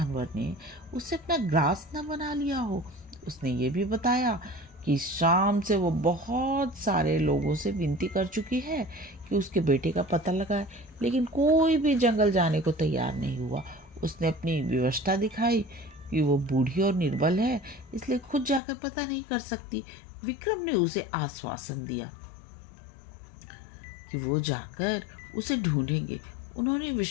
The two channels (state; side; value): drops out; right; at 18.6 s